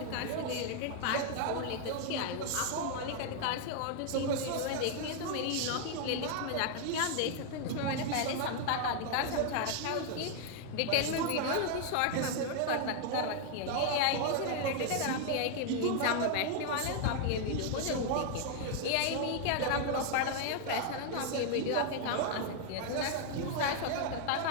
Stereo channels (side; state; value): both; different; correlation 0.00